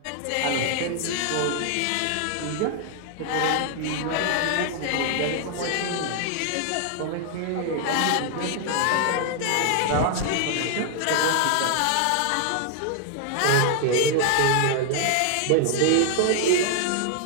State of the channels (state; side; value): different; both; correlation 0.00